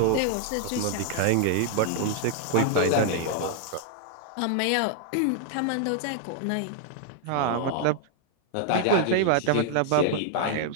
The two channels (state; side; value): different; both; correlation -0.01